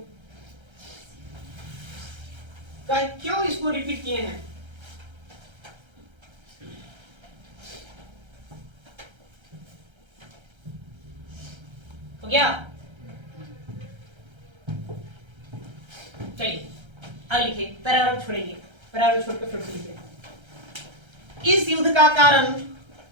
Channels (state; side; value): late; left; 1.3 ms